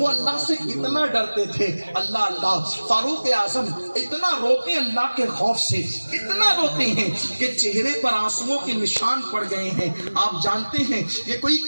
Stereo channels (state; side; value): inverted; both; correlation -1.00